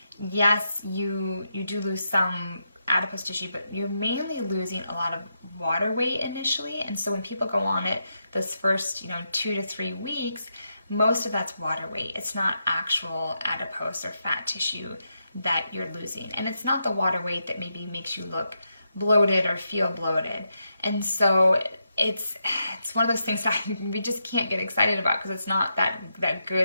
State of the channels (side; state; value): both; inverted; correlation -0.83